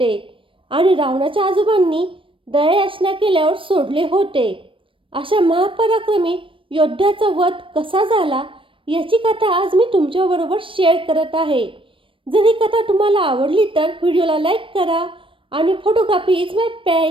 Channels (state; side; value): late; left; 0.25 ms